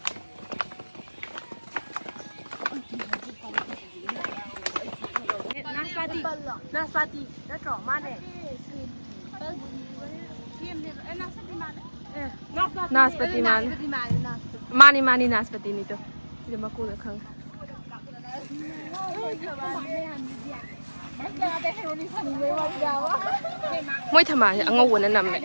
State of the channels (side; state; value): both; inverted; correlation -1.00